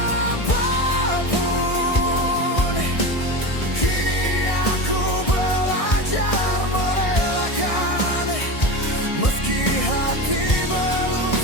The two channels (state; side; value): late; right; 1.6 ms